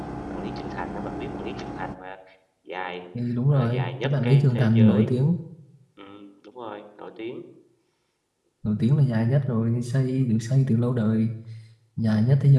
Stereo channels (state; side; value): identical; both; correlation 1.00